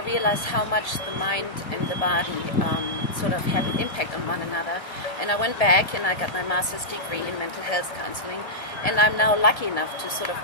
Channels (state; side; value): late; right; 1.8 ms